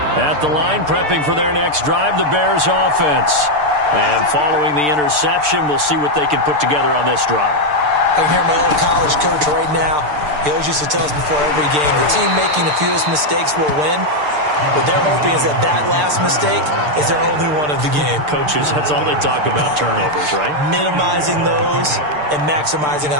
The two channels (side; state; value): left; late; 6.7 ms